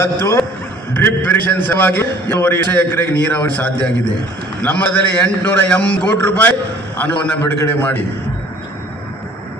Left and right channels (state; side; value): normal; both; correlation 0.53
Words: ಡ್ರಿಪ್ ಇರಿಗೇಷನ್ ಸಲುವಾಗಿ 2 ಎಕರೆಗೆ ನೀರಾವರಿ ಸಾಧ್ಯ ಆಗಿದೆ. ನಮ್ಮದಲ್ಲಿ 880 ಕೋಟಿ ರೂಪಾಯಿ ಹಣವನ್ನು ಬಿಡುಗಡೆ ಮಾಡಿ